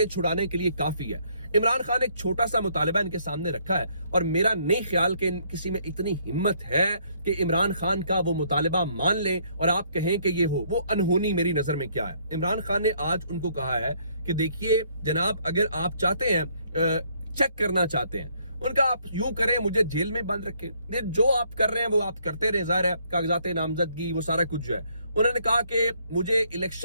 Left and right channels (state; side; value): inverted; both; correlation -0.67